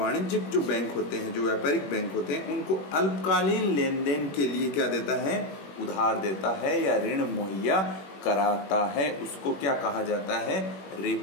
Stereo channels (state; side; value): late; right; 21 ms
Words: जो बैंक होते हैं, जो व्यापारिक बैंक होते हैं, उनको अल्पकालीन लेन देन के लिए क्या देता है? उधार देता है या ऋण मुहैया कराता है। उसको क्या कहा जाता है?